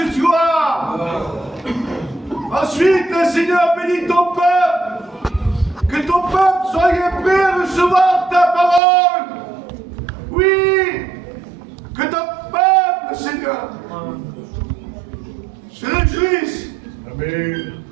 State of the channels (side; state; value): left; drops out; at 8.8 s